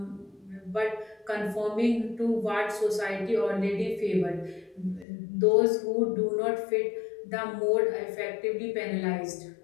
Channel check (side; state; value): right; drops out; at 5.1 s